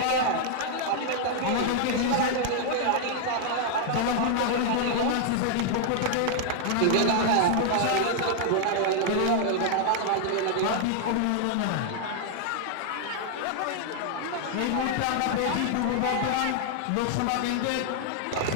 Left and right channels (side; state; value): both; different; correlation 0.00